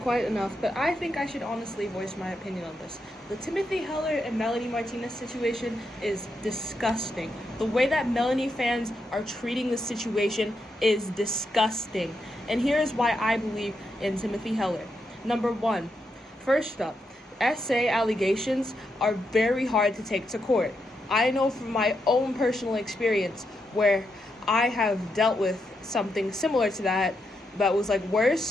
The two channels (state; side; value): normal; both; correlation 0.83